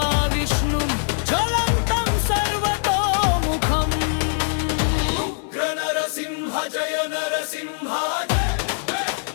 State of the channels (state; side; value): silent; right; 62 dB below the other